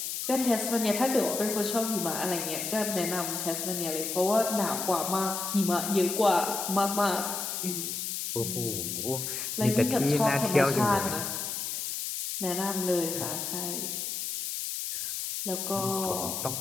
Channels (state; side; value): noise; left; hiss, 3 dB below the sound